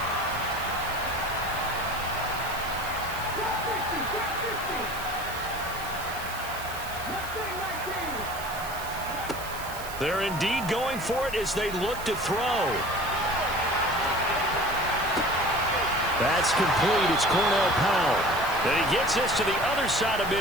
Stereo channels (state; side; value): noise; right; hiss, 13 dB below the sound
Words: They're indeed going for it as they look to throw. That's complete. It's Cornell Powell. And he gets this to the other side of